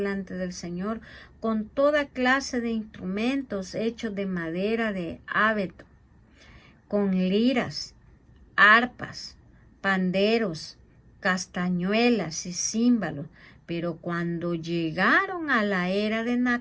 del Señor con toda clase de instrumentos hechos de madera de abeto, con liras, arpas, panderos, castañuelas y címbalos. Pero cuando llegaron a la era de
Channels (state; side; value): identical; both; correlation 1.00